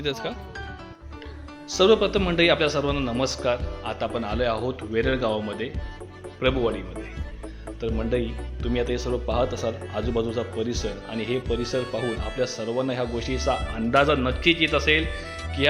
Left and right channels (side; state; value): both; identical; correlation 1.00